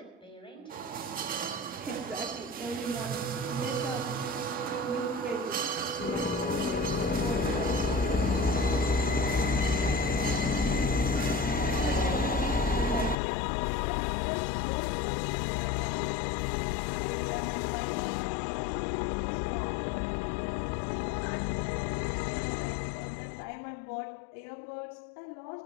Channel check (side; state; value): right; drops out; at 13.2 s